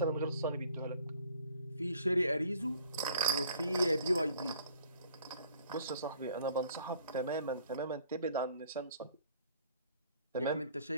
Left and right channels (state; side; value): inverted; both; correlation -0.57